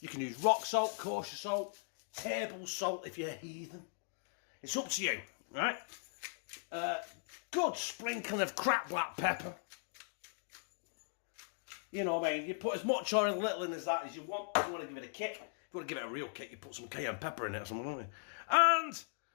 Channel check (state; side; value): silent; right; digital silence